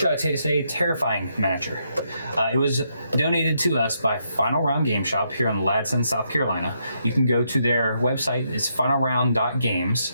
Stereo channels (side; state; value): both; inverted; correlation -0.78